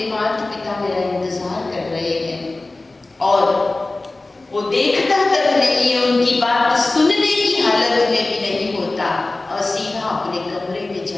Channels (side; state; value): right; quieter; 3.1 dB